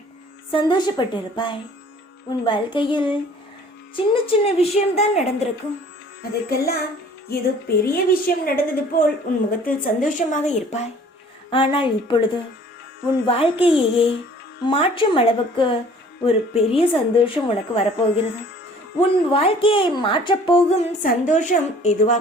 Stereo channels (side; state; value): both; normal; correlation 0.52